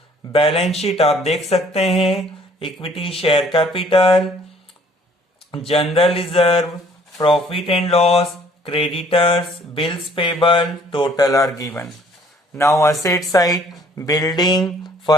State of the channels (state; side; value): normal; both; correlation 0.58